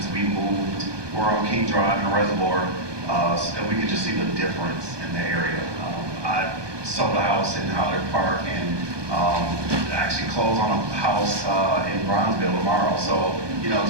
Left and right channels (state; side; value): late; left; 1.2 ms